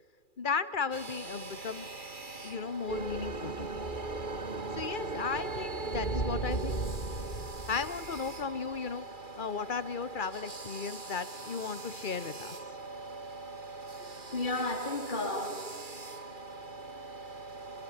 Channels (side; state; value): right; late; 2.4 ms